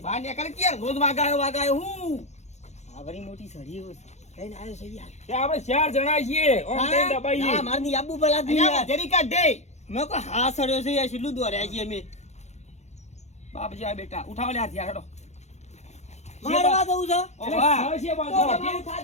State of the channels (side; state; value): right; late; 0.33 ms